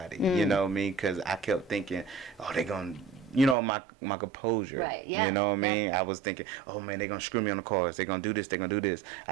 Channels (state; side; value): drops out; left; at 3.6 s